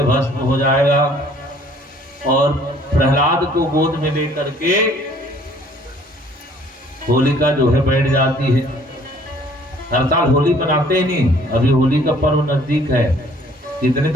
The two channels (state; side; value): normal; both; correlation 0.57